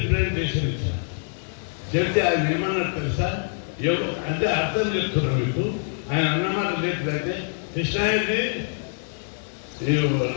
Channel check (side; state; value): right; silent; digital silence